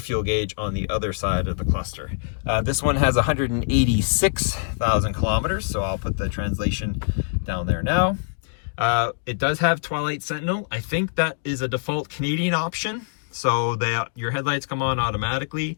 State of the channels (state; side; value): silent; right; digital silence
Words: gauge on the other side of the cluster. This one has 186,000 kilometers, so I'll put the translation down there now. It does have Twilight Sentinel. I think that is a default Canadian option. So your headlights come on automatically,